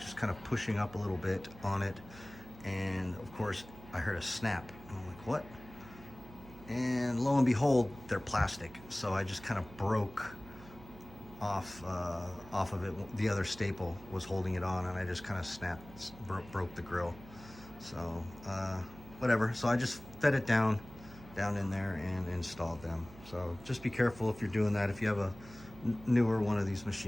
kind of pushing up a little bit on it, and of course I heard a snap. I'm like, what? And lo and behold, they're plastic. So I just kind of broke off of it. The other staple was holding it on, and I just kind of broke the grill. So whatever. So I just fed it down in there and installed them. So just be careful if you're doing that. If you have a newer one of these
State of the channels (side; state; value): right; noise; hum, 18 dB below the sound